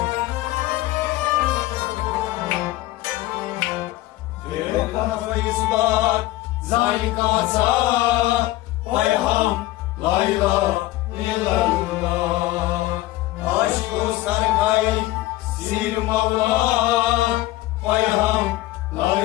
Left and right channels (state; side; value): quieter; right; 17.3 dB